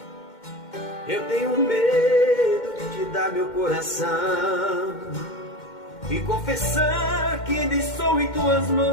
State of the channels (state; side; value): late; right; 2.1 ms